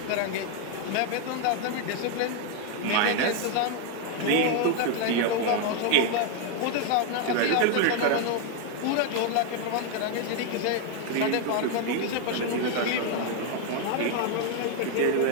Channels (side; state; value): both; different; correlation 0.00